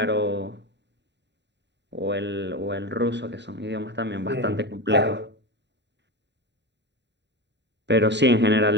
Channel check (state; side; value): late; left; 0.51 ms